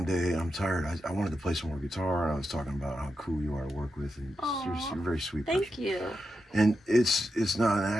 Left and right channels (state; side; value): normal; both; correlation 0.87